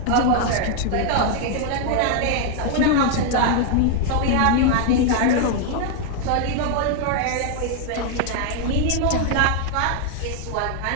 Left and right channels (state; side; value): different; both; correlation 0.00